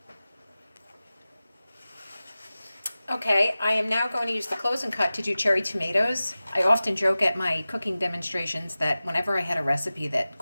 Okay, I am now going to use the close and cut to do cherry tomatoes. I often joke at my cooking demonstrations that whenever I had a recipe that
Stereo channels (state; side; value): inverted; both; correlation -0.97